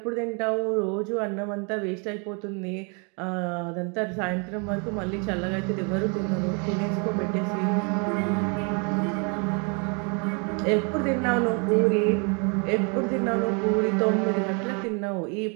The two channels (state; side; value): quieter; left; 35.1 dB